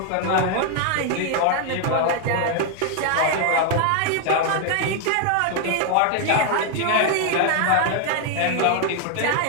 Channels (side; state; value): both; different; correlation 0.00